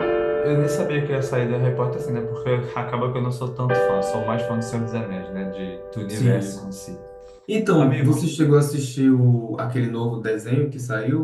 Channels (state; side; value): identical; both; correlation 1.00